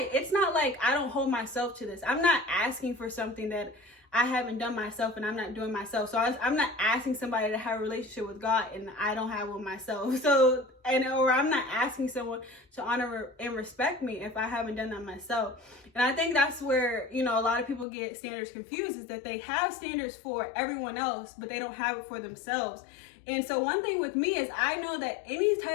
not like I don't hold myself to this. I'm not asking for something that I haven't done myself and I'm not doing myself. So I'm not asking somebody to have a relationship with God and I don't have one myself. So, or I'm not asking someone to honor and respect me if I haven't done that myself. And I think that's where, you know, a lot of people get standards confused, is that they have standards for everyone else, but they don't have it for themselves. And so one thing with me is I know that any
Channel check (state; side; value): drops out; right; at 17.9 s